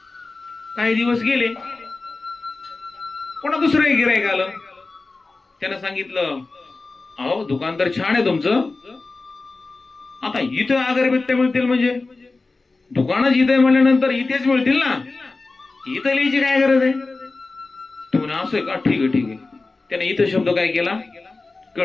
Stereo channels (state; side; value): quieter; right; 3.6 dB